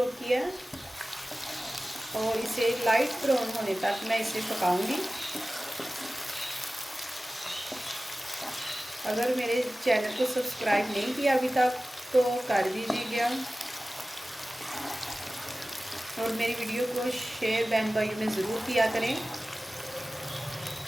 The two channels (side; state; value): both; normal; correlation 0.96